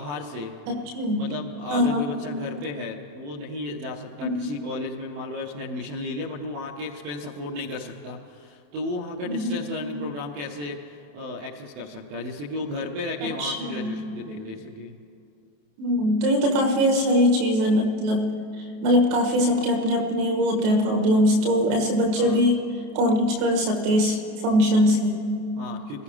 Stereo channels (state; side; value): late; left; 28 ms